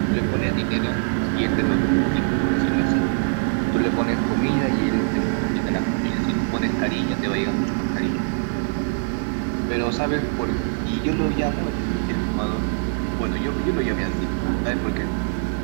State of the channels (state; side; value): silent; left; digital silence